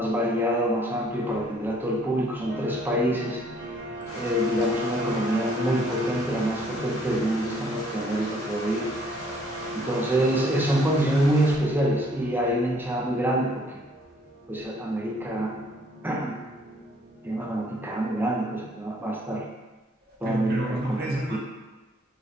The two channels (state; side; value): normal; both; correlation 0.62